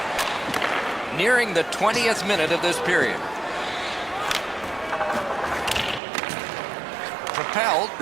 Nearing the 20th minute of this period. Propelled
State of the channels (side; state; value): left; drops out; at 6.0 s